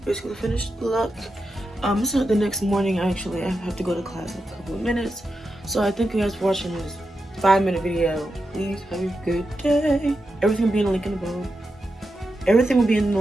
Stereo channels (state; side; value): normal; both; correlation 0.88